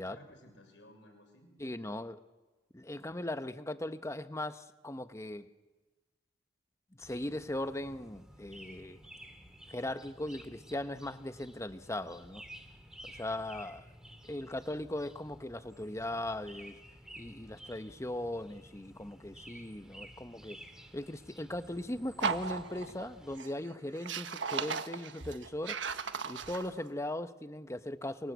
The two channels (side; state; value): both; normal; correlation 0.54